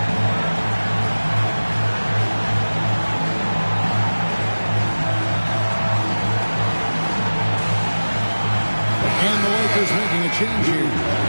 And the Lakers making a change here.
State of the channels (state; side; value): inverted; both; correlation -1.00